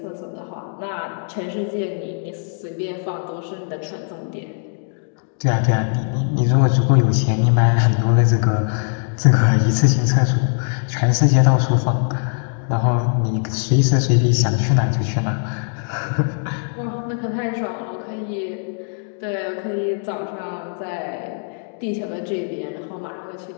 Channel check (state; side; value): silent; right; 65 dB below the other